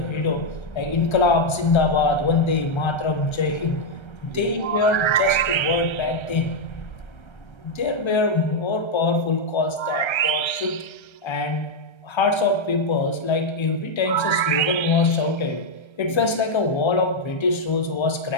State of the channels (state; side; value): late; right; 1.3 ms